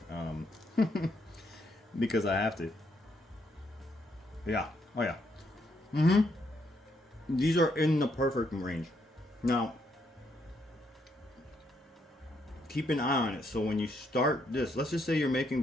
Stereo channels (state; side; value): normal; both; correlation 0.75